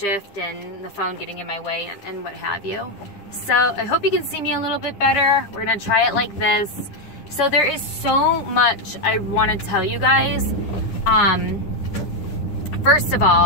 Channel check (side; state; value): right; late; 9.9 ms